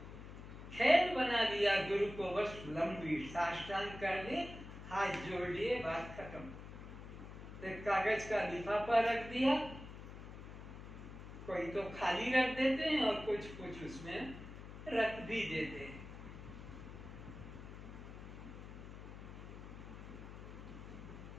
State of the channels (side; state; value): left; noise; hum, 12 dB below the sound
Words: खेल बना दिया गुरु को, बस लंबी साष्टांग कर लिए, हाथ जोड़ लिए, बात खत्म। एक कागज का लिफाफा रख दिया, कोई तो खाली रख देते हैं और कुछ कुछ उसमें रख भी देते हैं।